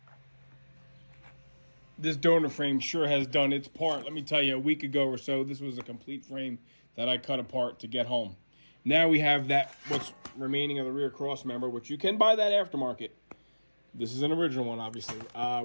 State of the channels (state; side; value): inverted; both; correlation -1.00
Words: This donor frame sure has done its part. Let me tell you, a week ago or so, this was a complete frame that I cut apart to get home. Now we have that, what's remaining of the rear cross member, which you can buy that aftermarket. This is an original one, obviously.